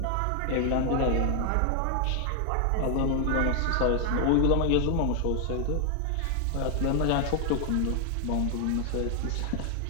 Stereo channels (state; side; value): different; both; correlation 0.00